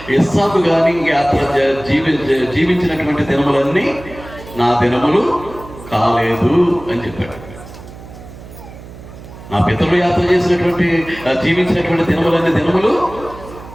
ఇస్సాకు కానీ యాత్ర జీవించినటువంటి దినములన్నీ నా దినములు కాలేదు అని చెప్పాడు. నా పితరులు యాత్ర చేసినటువంటి జీవించినటువంటి దినములన్నీ దినములు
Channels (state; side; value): noise; right; hum, 16 dB below the sound